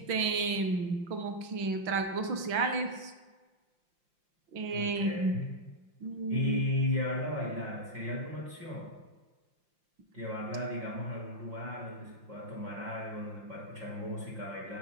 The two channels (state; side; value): late; left; 5.7 ms